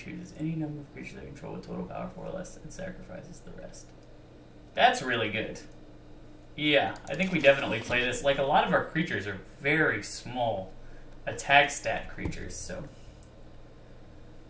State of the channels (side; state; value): both; identical; correlation 1.00